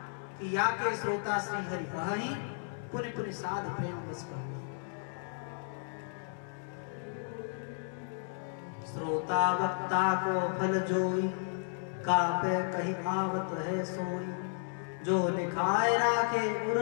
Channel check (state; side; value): silent; right; digital silence